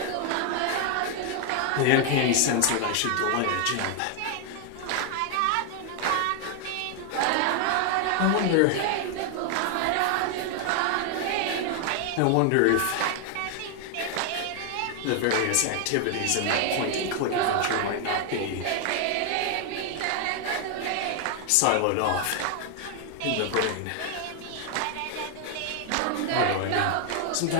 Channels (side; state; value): both; different; correlation 0.00